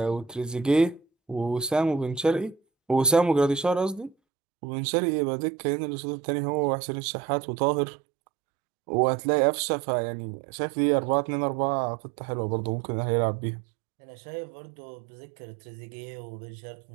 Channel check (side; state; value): left; drops out; at 4.2 s